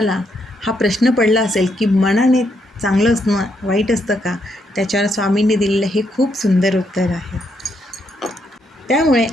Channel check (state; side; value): normal; both; correlation 0.77